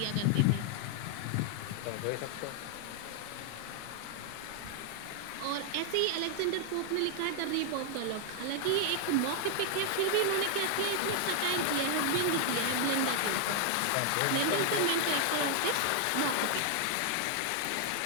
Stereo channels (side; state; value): both; different; correlation 0.00